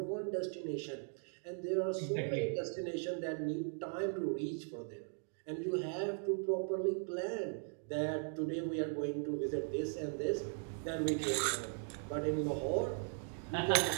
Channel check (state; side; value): silent; left; 52 dB below the other